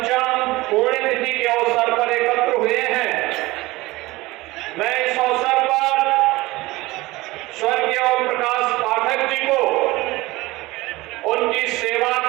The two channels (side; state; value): left; quieter; 20.1 dB